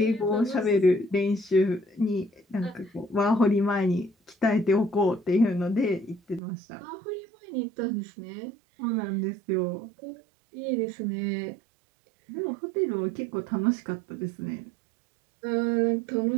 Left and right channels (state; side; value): drops out; left; at 6.4 s